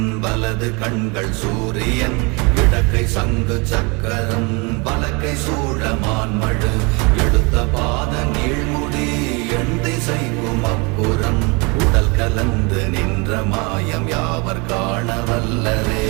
வலது கண்கள் சூரியன் இடக்கை சங்கு சக்கரம் வலக்கை சூழமான்மழு எடுத்த பாத நீழ்முடி எண் திசைக்கும் அப்புறம் உடல் கலந்து நின்ற மாயம் யாவர் காண வல்லரே.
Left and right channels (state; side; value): quieter; left; 29.5 dB